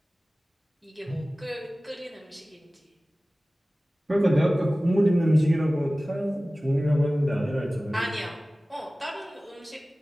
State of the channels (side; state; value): both; normal; correlation 0.97